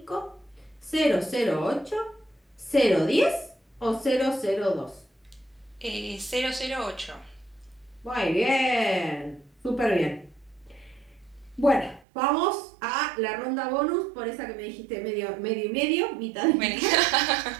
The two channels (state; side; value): drops out; left; at 12.1 s